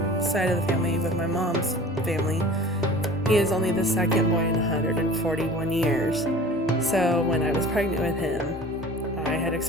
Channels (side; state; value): both; normal; correlation 0.42